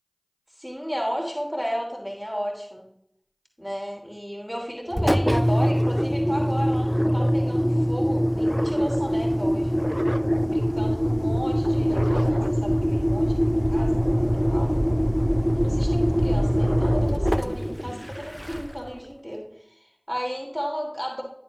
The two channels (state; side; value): identical; both; correlation 1.00